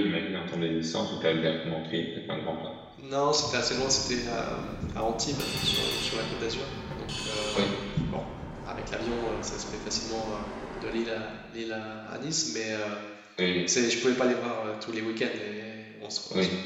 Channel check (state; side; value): identical; both; correlation 1.00